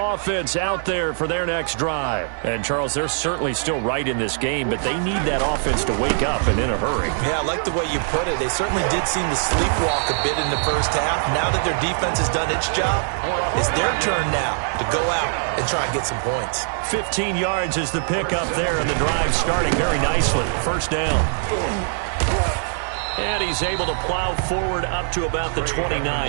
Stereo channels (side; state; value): left; silent; digital silence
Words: offense out there for their next drive. And, Charles, they're certainly still right in this game, but they need that offense to wake up and in a hurry. Yeah, I like the way you put it. They certainly did seem to sleepwalk a bit in the first half. Now that their defense has done its job, it's their turn now to go out and try and get some points. 15 yards is the pickup there, and the drive starting very nicely. First down. And he's able to plow forward up to about the